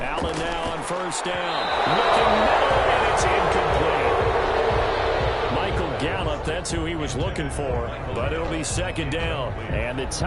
Allen now on 1st down. Looking middle, and it's incomplete. Michael Gallup, that's who he was looking for, but it'll be 2nd down. And the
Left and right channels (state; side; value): identical; both; correlation 1.00